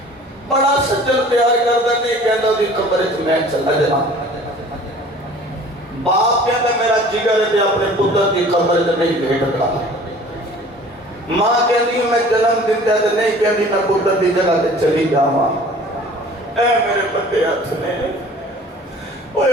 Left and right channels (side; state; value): both; normal; correlation 0.47